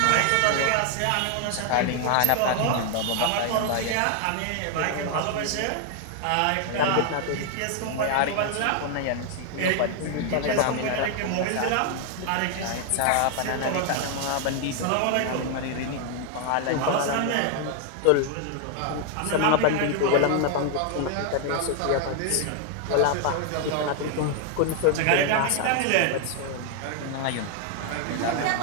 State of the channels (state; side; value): different; both; correlation 0.00